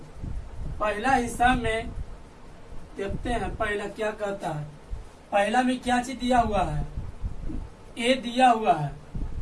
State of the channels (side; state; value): both; identical; correlation 1.00